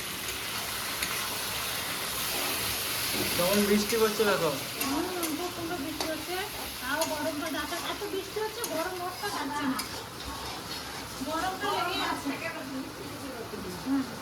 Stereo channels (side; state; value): both; identical; correlation 1.00